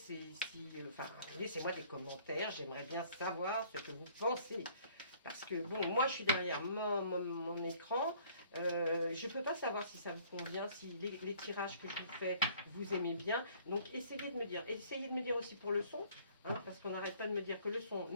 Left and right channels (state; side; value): inverted; both; correlation -0.57